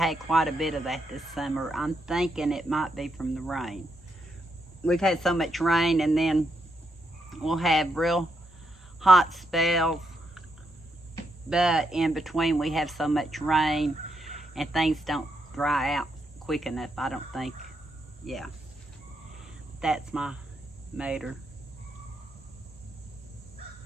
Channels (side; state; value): both; normal; correlation 0.80